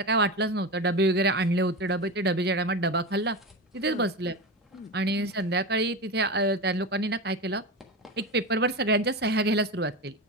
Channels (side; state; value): both; normal; correlation 0.22